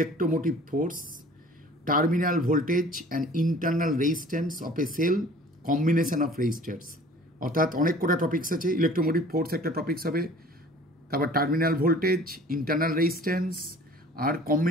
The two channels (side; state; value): both; normal; correlation 0.48